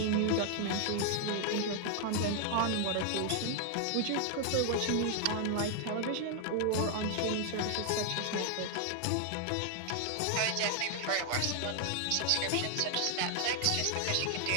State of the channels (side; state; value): both; different; correlation 0.00